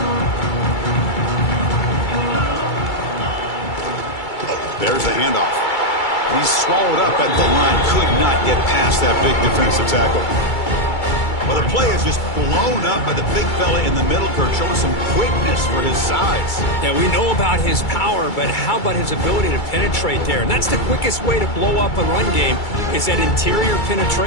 There's the handoff. He's swallowed up at the line. Could not get past that big defensive tackle. Well, the play is just blown up by the big fella in the middle, Kurt, showing some quickness for his size. Yeah, we know about his power, but how about his ability to penetrate there? And that's the quickest way to blow up a run game, is that interior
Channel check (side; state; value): right; late; 2.3 ms